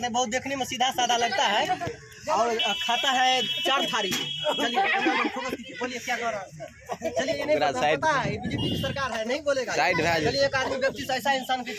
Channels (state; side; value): identical; both; correlation 1.00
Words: हैं, बहुत देखने में सीधा साधा लगता है और खाता है 4 थाली। चलिए कैमरा मैन फोकस कीजिए, बोलिए क्या कर रहा है। चलिए ये नहीं पता है, बीजेपी की सरकार है, नहीं बोलेगा। चलिए एक आदमी व्यक्ति से ऐसा इंसान की